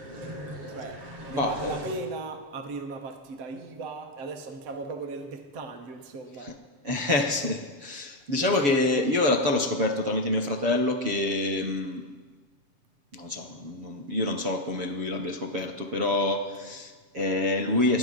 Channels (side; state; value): left; late; 7.1 ms